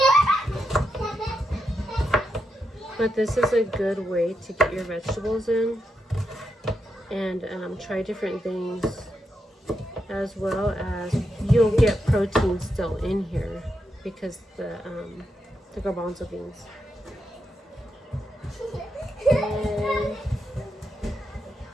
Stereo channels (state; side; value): normal; both; correlation 0.84